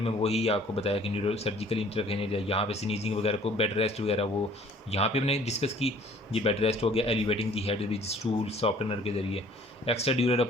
में वही आपको बताया कि न्यूरो सर्जिकल इंटरवेंशन है, यहाँ पे स्नीजिंग वगैरह को, बेड रेस्ट वगैरह वो यहाँ पे हमने डिस्कस की। ये बेड रेस्ट हो गया, elevating the head with stool softener के जरिए। एक्स्ट्रा ड्यूरल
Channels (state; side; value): normal; both; correlation 0.54